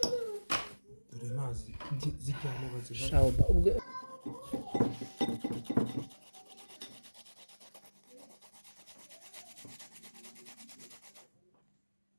dore mazi zijyana baziha Shauba ubwo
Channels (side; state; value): both; inverted; correlation -1.00